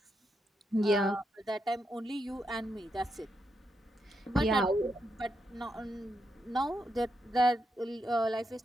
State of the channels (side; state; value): both; normal; correlation 0.82